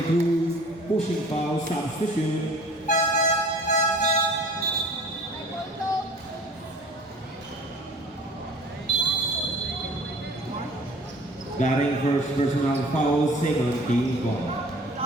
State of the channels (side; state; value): both; normal; correlation 0.48